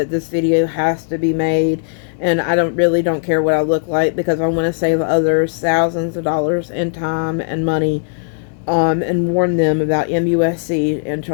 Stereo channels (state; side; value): silent; right; digital silence